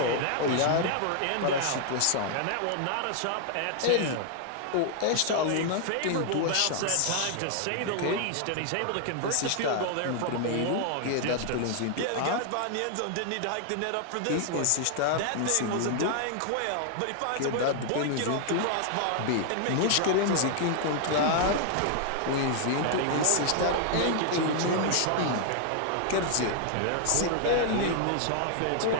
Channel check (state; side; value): different; both; correlation 0.00